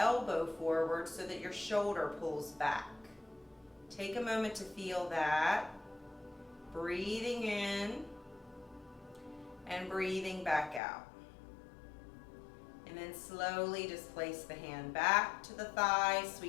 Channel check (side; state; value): right; drops out; at 10.8 s